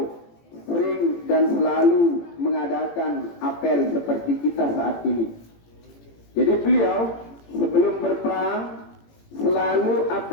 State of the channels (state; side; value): late; right; 18 ms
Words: sering dan selalu mengadakan apel seperti kita saat ini. Jadi beliau sebelum berperang selalu